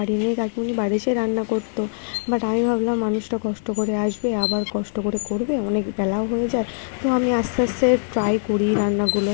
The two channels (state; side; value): silent; right; 64 dB below the other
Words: নেই, কাকিমুনি বাড়ি এসে রান্না করতো, বাট আমি ভাবলাম মানুষটা কষ্ট করে আসবে, আবার কষ্ট করে করবে, অনেক বেলাও হয়ে যায়। তো আমি আস্তে আস্তে ট্রাই করি রান্নাগুলো।